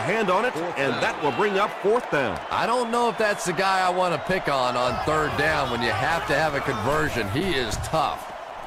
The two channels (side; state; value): both; identical; correlation 1.00